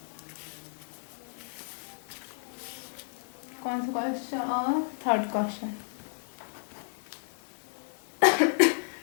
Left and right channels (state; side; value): silent; right; digital silence